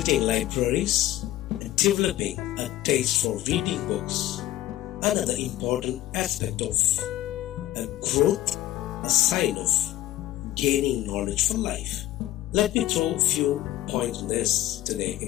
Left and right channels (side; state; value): right; quieter; 14.4 dB